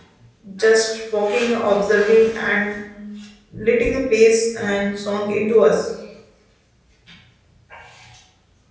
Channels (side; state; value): both; identical; correlation 1.00